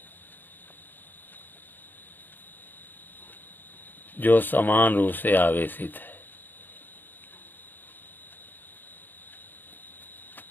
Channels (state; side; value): late; right; 0.091 ms